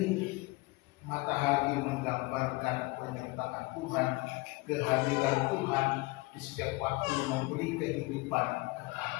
matahari menggambarkan penyertaan Tuhan, kehadiran Tuhan di setiap waktu memberi kehidupan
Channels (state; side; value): quieter; right; 24.0 dB